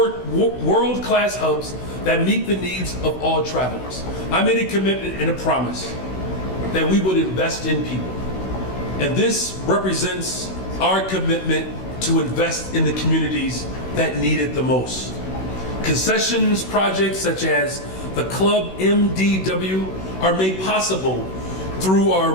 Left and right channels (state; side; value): late; right; 16 ms